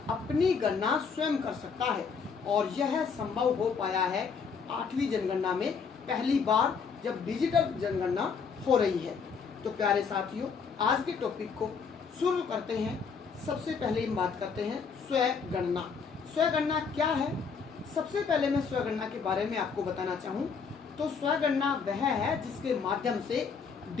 गणना स्वयं कर सकता है और यह संभव हो पाया है 8वीं जनगणना में पहली बार जब डिजिटल जनगणना हो रही है। तो प्यारे साथियों आज के टॉपिक को शुरू करते हैं। सबसे पहले हम बात करते हैं स्वगणना। स्वगणना क्या है? सबसे पहले मैं स्वगणना के बारे में आपको बताना चाहूँ तो स्वगणना वह है जिसके माध्यम से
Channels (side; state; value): right; quieter; 5.8 dB